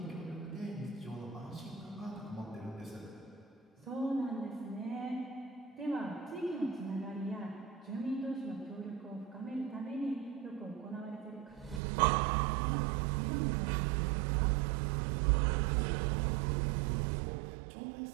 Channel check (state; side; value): drops out; left; at 11.8 s